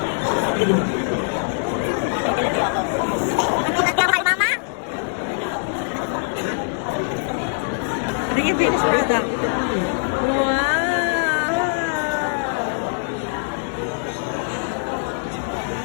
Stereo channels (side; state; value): right; silent; 64 dB below the other